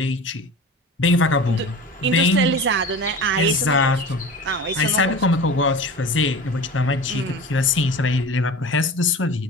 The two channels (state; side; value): normal; both; correlation 0.34